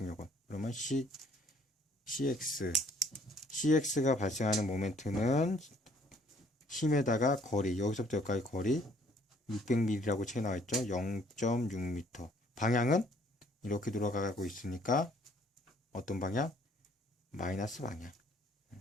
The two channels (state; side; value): normal; both; correlation 0.61